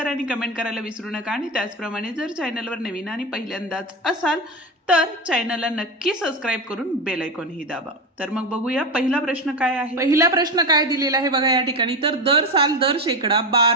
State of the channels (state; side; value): normal; both; correlation 0.18